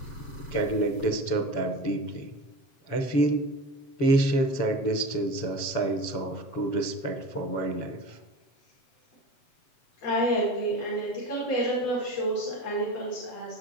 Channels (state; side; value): late; right; 7.2 ms